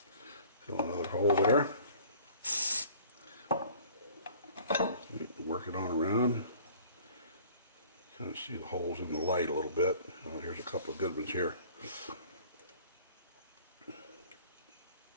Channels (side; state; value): both; inverted; correlation -0.50